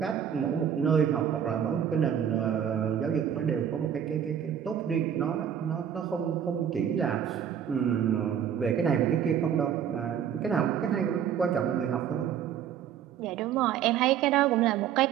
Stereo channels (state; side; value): quieter; left; 8.9 dB